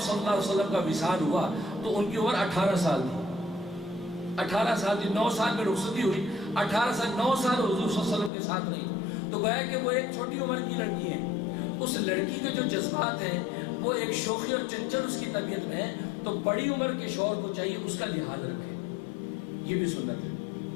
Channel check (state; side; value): drops out; right; at 8.3 s